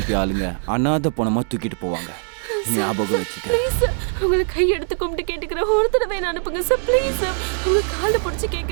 ஆளுங்க அனாதை பணமா தூக்கிட்டு போவாங்க. ஞாபகம் வச்சுக்க. ப்ளீஸ் சார், உங்களை கையெடுத்து கும்பிட்டு கேட்டுக்கிறேன். ஒரு தடவை என்ன அனுப்புங்க சார். Please sir. உங்க காலை பிடிச்சி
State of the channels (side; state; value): left; silent; 64 dB below the other